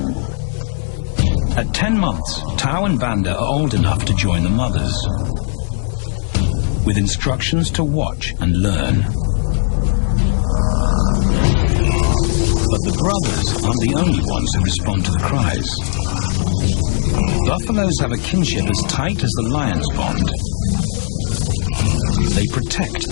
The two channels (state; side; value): silent; right; 68 dB below the other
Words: At 10 months, Tau and Banda are old enough to join the mothers, with instructions to watch and learn. But the brothers aren't the only ones who respond to the cries. Buffaloes have a kinship as tight as the lions bond. They protect